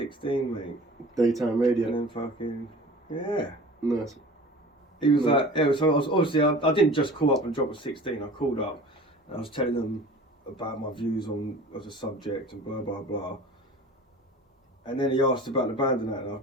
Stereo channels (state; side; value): normal; both; correlation 0.41